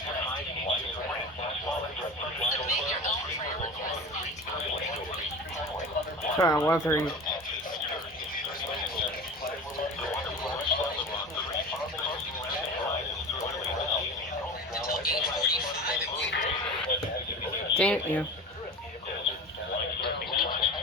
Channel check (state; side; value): normal; both; correlation 0.32